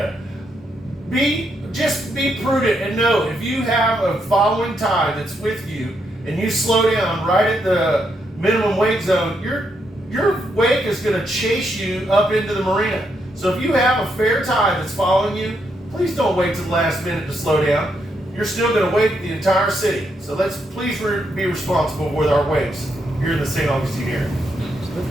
Just be prudent and know if you have a following tide that's with you and you slow down right at the minimum wake zone, your wake is going to chase you up into the marina. So if you have a fair tide that's following you, please don't wait till the last minute to slow down. You're still going to wake the entire city. So let's please be responsible with our wakes here in the St. Augustine area.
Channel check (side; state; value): both; normal; correlation 0.79